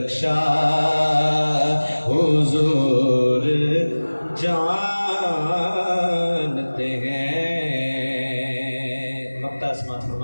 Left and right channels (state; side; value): inverted; both; correlation -1.00